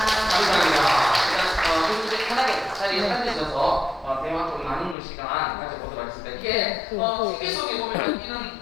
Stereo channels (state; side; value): drops out; right; at 5.0 s